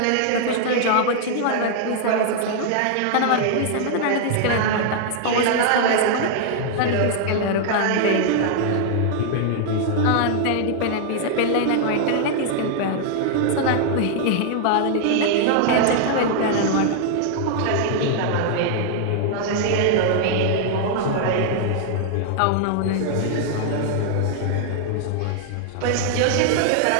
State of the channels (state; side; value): different; both; correlation -0.01